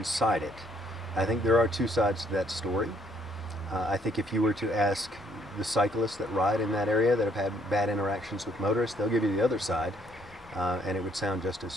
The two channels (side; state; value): both; normal; correlation 0.66